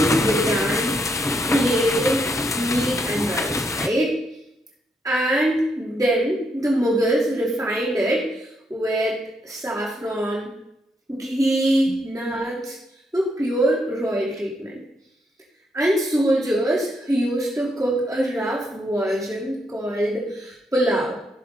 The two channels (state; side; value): normal; both; correlation 0.77